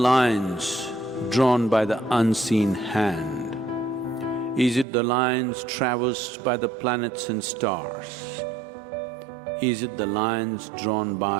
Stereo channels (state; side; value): drops out; left; at 4.9 s